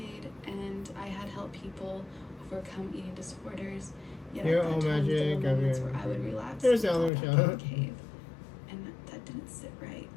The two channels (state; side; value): drops out; right; at 7.1 s